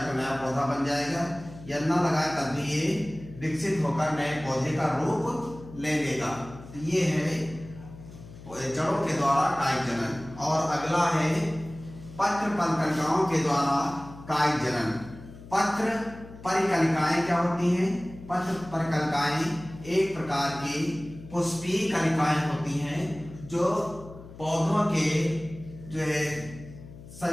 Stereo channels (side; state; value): left; noise; hum, 17 dB below the sound